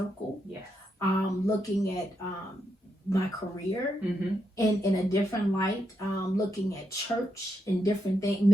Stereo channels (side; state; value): both; normal; correlation 0.82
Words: Yeah. Looking at my career in a different light, looking at church in different things,